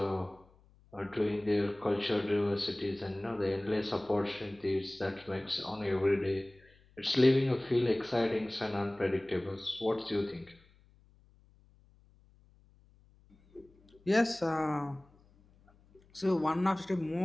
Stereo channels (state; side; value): noise; left; hum, 29 dB below the sound